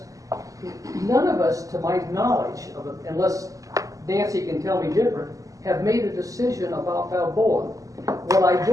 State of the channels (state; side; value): late; left; 0.16 ms